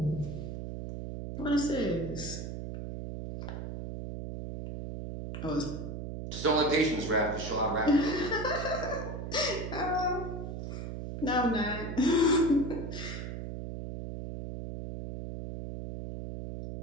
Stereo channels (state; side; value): noise; right; hum, 6 dB below the sound